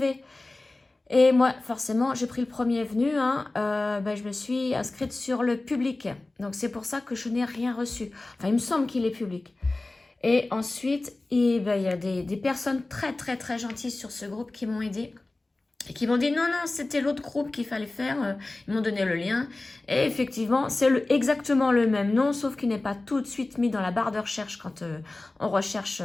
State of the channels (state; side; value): quieter; right; 3.0 dB